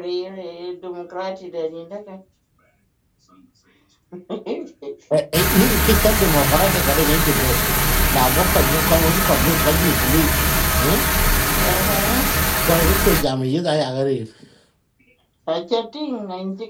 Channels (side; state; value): both; identical; correlation 1.00